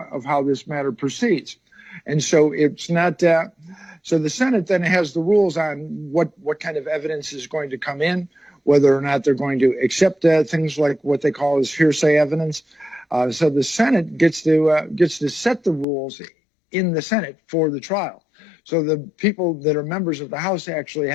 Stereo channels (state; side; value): drops out; right; at 15.9 s